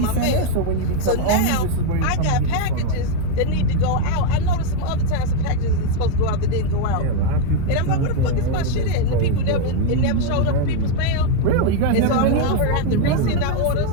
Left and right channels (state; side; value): different; both; correlation 0.01